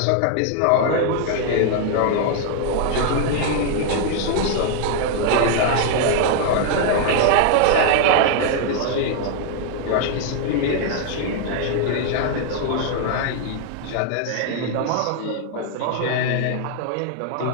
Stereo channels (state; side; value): different; both; correlation 0.00